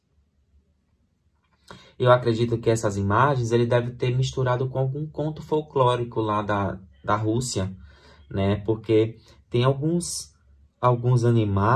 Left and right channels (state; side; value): identical; both; correlation 1.00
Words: Eu acredito que essas imagens ele deve ter misturado com algum conto folclórico lá da Rússia, né? Porque tem alguns